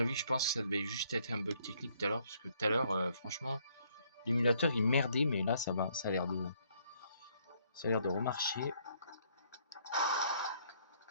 je pense que ça devait juste être un bug technique tout à l'heure, parce que tout à l'heure, franchement, l'émulateur il merdait, mais là ça va, ça a l'air de remarcher.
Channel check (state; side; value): inverted; both; correlation -0.67